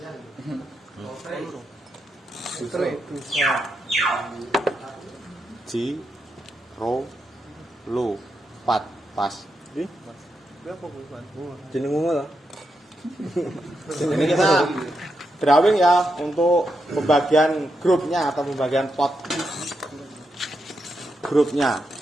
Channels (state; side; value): normal; both; correlation 0.84